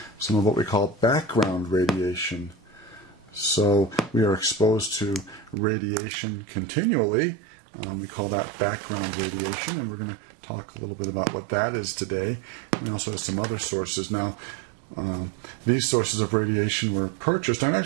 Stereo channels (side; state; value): left; drops out; at 5.6 s